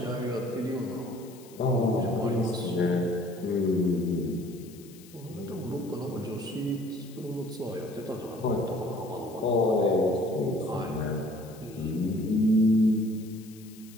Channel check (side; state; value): left; noise; hiss, 22 dB below the sound